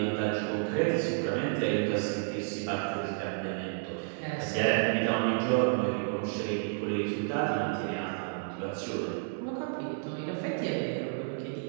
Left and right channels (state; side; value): silent; left; digital silence